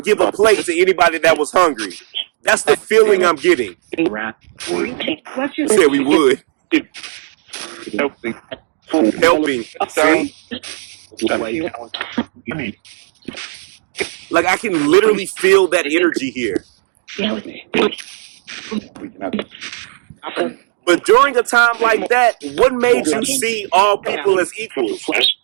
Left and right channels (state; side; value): silent; left; digital silence